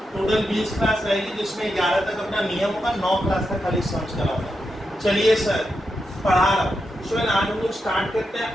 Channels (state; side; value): normal; both; correlation 0.86